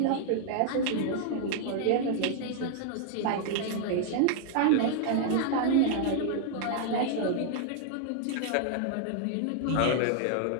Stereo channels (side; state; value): both; different; correlation -0.01